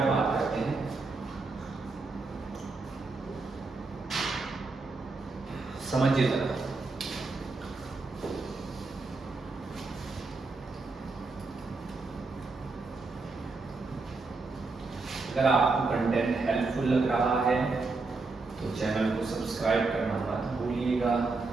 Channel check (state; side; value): quieter; left; 3.8 dB